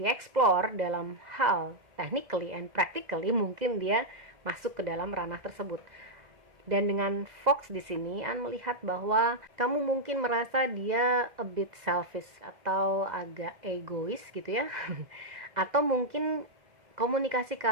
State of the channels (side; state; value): left; late; 2.0 ms